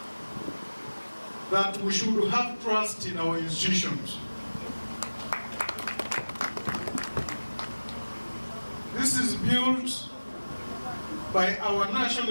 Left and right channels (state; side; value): inverted; both; correlation -1.00